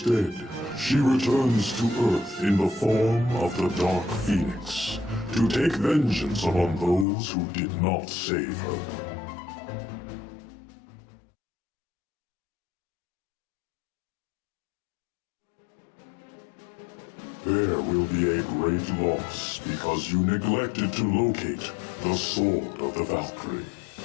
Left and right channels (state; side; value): drops out; right; at 7.1 s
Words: she returns to Earth in the form of the Dark Phoenix, to take vengeance upon those who did not save her. There will be a great loss because you neglected to locate the Sword of the Valkyrie.